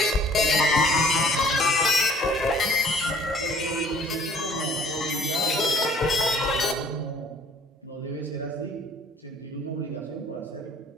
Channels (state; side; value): normal; both; correlation 0.55